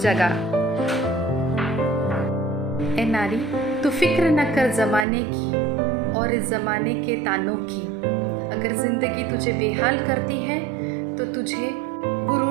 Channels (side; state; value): left; drops out; at 5.1 s